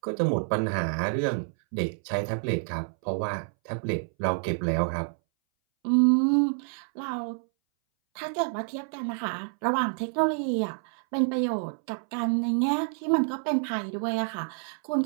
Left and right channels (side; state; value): left; silent; 59 dB below the other